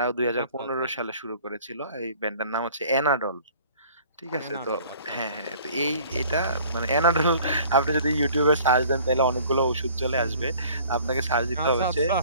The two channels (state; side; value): inverted; both; correlation -0.51